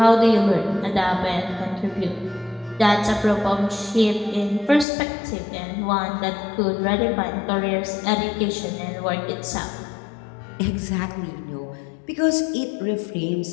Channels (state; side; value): drops out; right; at 4.9 s